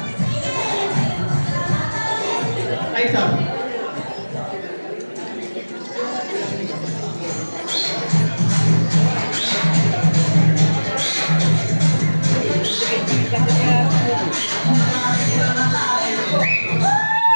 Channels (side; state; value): both; inverted; correlation -1.00